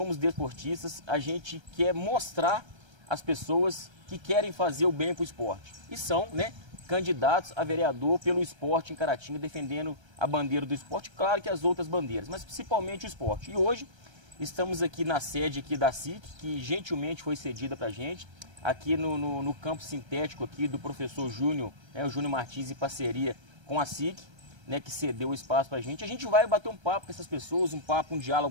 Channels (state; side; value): late; left; 1.3 ms